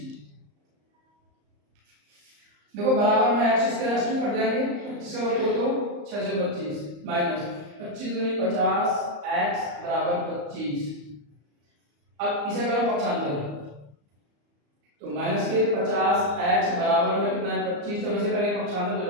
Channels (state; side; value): late; left; 34 ms